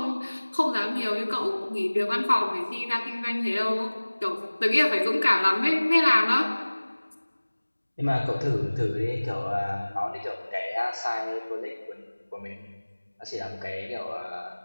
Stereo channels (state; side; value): inverted; both; correlation -1.00